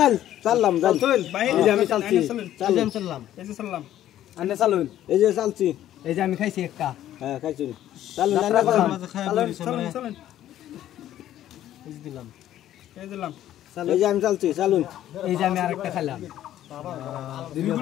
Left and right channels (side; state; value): right; quieter; 12.4 dB